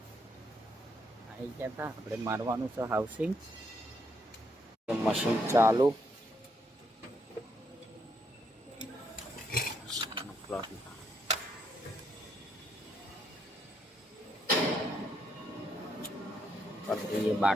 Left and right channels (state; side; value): normal; both; correlation 0.75